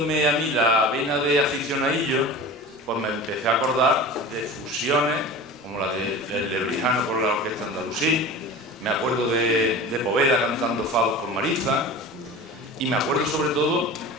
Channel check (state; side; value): normal; both; correlation 0.34